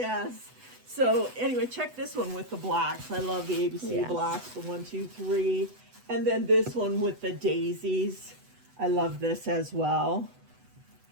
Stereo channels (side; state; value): left; late; 8.0 ms